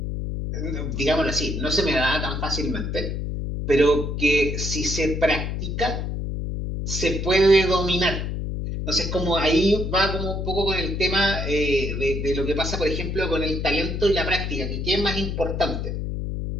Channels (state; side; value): noise; left; hum, 3 dB below the sound